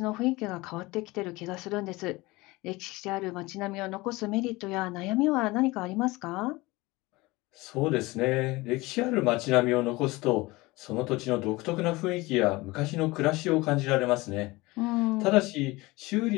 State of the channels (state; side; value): quieter; right; 21.8 dB